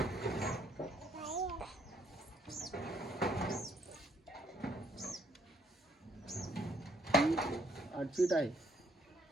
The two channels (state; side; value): normal; both; correlation 0.68